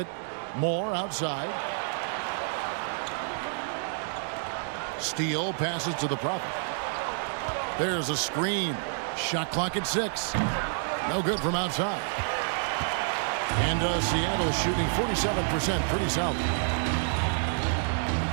Moore outside. Steele passes to the Prophet. There's a screen. Shot clock at 6. No good from outside. And Seattle is shooting 47%. Pretty solid.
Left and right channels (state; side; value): silent; left; 58 dB below the other